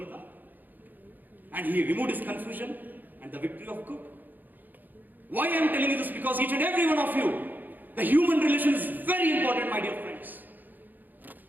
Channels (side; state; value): left; late; 0.086 ms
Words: And he removed his confusion and the victory of good. Why I am telling you this? Because each and every one of you, the human relation is very important, my dear friends.